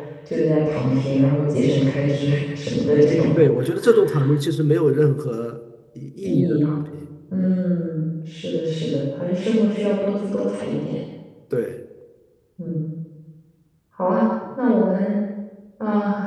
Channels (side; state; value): both; identical; correlation 1.00